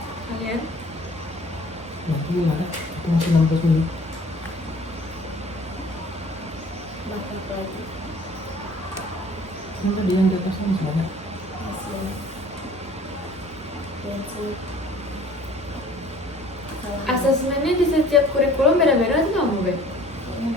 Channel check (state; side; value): normal; both; correlation 0.51